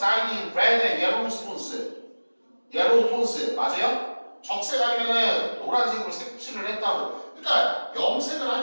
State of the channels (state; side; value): inverted; both; correlation -1.00